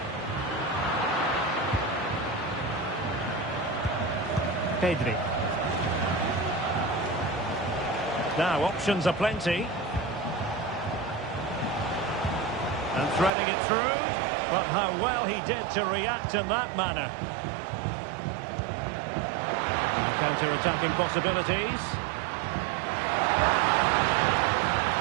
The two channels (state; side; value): drops out; left; at 13.3 s